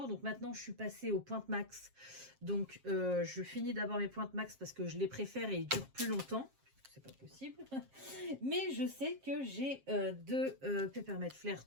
Donc maintenant, je suis passée aux pointes max. Donc, je finis d'abord mes pointes max parce que je les préfère et ils durent plus longtemps. C'est pas possible. Mais je sais que j'ai deux Peppermint Flair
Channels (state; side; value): late; left; 7.4 ms